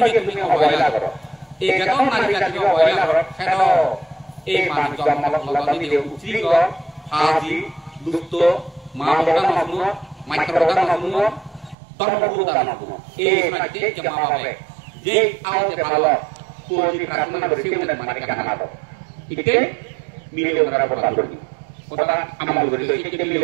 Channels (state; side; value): drops out; left; at 11.8 s